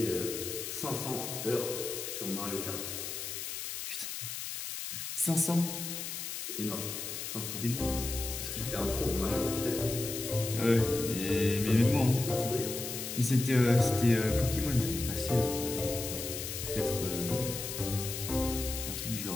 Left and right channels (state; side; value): noise; left; hiss, 6 dB below the sound